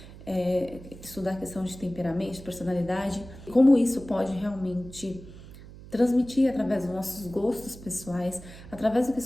estudar a questão de temperamento, de personalidade, como isso pode realmente transmitir através dos nossos gostos pessoais, através do que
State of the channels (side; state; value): right; noise; hum, 17 dB below the sound